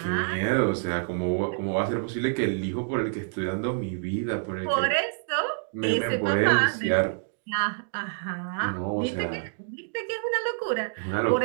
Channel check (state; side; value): silent; left; digital silence